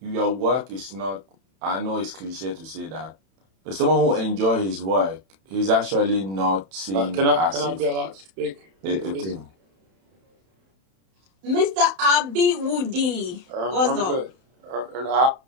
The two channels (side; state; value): left; late; 31 ms